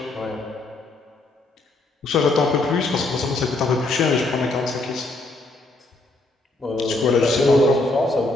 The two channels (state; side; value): quieter; right; 3.0 dB